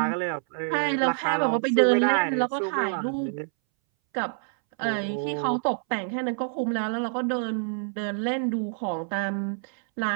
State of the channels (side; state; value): left; silent; 60 dB below the other